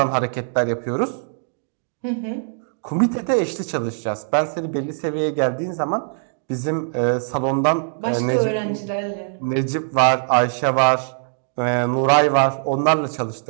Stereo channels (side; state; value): left; silent; digital silence